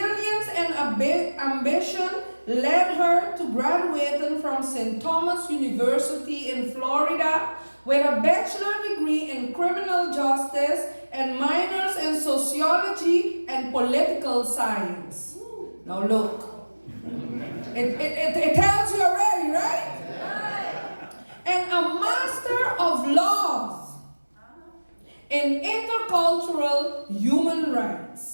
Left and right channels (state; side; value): inverted; both; correlation -1.00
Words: and ambition led her to graduating from St. Thomas University in Florida with a bachelor degree in criminal justice and minors in sociology and political science. Now look, it tells you already, right? And a master of laws in intercultural human